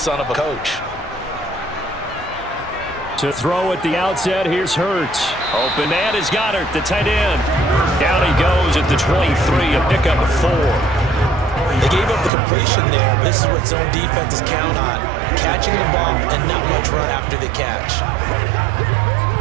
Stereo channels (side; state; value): left; drops out; at 12.3 s